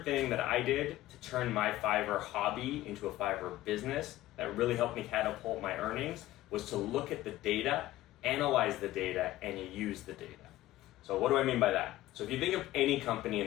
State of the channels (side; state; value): right; quieter; 15.7 dB